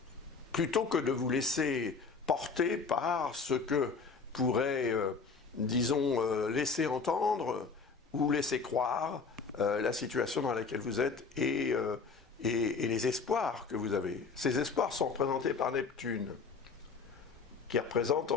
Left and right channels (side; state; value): right; quieter; 4.9 dB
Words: plutôt que de vous laisser porter par ce que pourrait, disons, laisser entendre ou laisser croire la situation dans laquelle vous êtes et les espoirs que vous avez. Ces espoirs sont représentés par Neptune, qui représente